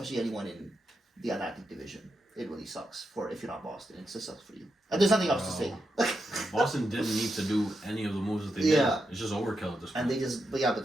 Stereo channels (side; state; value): both; normal; correlation 0.86